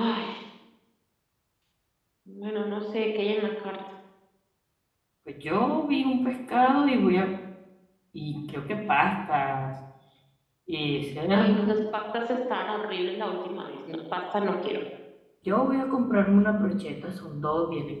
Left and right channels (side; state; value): both; identical; correlation 1.00